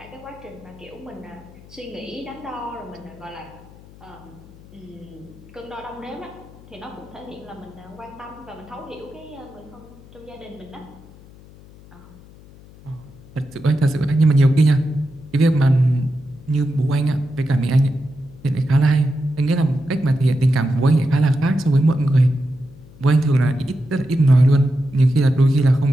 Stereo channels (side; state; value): left; noise; hum, 22 dB below the sound